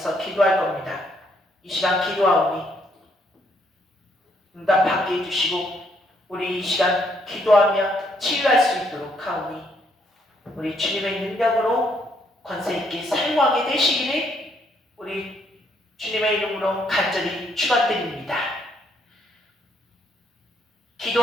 기도할 겁니다. 이 시간 기도하오니 응답받게 해주시고 우리 이 시간 기도하며 치유할 수 있도록 하오니 우리 주님의 능력으로 권세있게 사용하게 되시기를 우리 주님의 이름으로 간절히 축원드립니다.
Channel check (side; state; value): both; normal; correlation 0.71